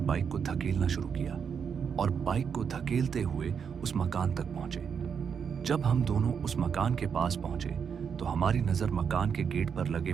बाइक को धकेलना शुरू किया और बाइक को धकेलते हुए उस मकान तक पहुंचे। जब हम दोनों उस मकान के पास पहुंचे, तो हमारी नजर मकान के गेट पर लगे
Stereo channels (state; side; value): quieter; left; 6.9 dB